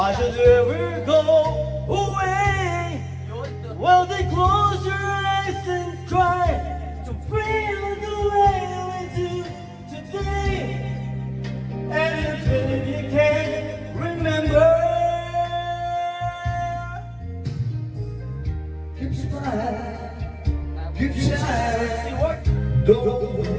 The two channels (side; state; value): both; identical; correlation 1.00